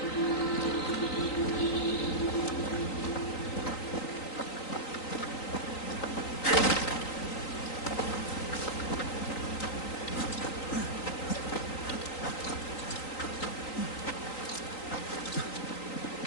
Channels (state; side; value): late; right; 3.9 ms